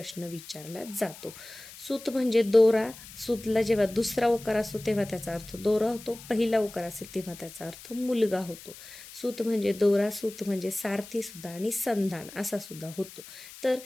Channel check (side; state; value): left; noise; hiss, 16 dB below the sound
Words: विचारला जातो. सूत म्हणजे दोरा. सूतला जेव्हा दुसरा उकार असतो तेव्हा त्याचा अर्थ दोरा होतो, पहिला उकार असेल तेव्हा त्याचा अर्थ मुलगा होतो. सूत म्हणजे दोरा, सूत म्हणजे सारथी सुद्धा आणि संधान असा सुद्धा होतो. तर